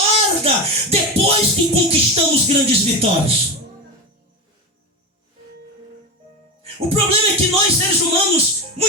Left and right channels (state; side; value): normal; both; correlation 0.20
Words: depois que conquistamos grandes vitórias. O problema é que nós, seres humanos,